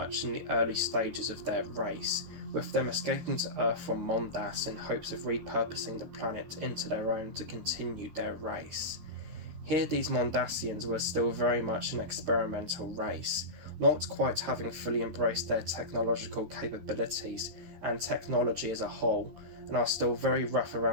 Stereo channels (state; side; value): late; left; 13 ms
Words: in the early stages of their race, with them escaping to Earth from Mondas in hopes of repurposing the planet into their own to continue their race. Here these Mondasians were still very much an experimental race, not quite having fully embraced their technological capabilities and technology as a whole, and are still very rough